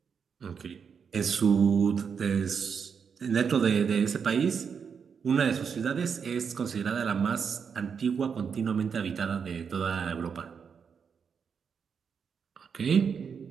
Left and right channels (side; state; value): left; quieter; 6.5 dB